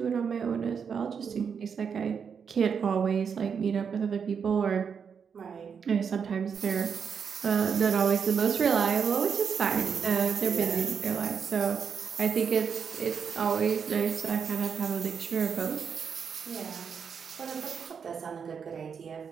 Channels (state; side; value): quieter; left; 6.6 dB